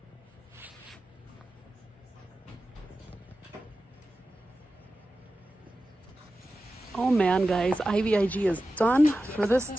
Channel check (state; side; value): normal; both; correlation 0.94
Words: Oh man, guys, IVIG is done for this